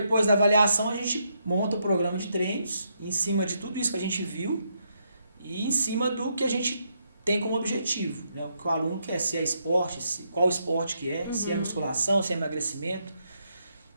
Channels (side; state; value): both; inverted; correlation -0.78